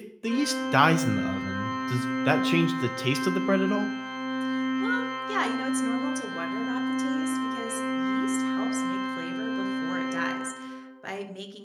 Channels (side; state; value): both; identical; correlation 1.00